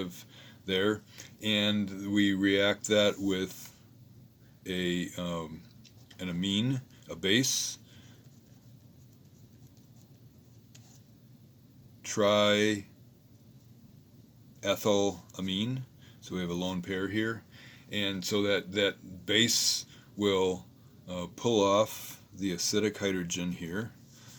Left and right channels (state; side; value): identical; both; correlation 1.00